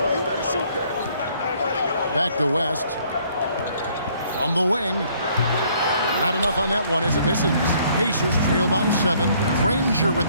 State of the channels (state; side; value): inverted; both; correlation -0.63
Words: Back to West. From the wing. Not enough on that one as it misses. Pacers trail by 7. Granger with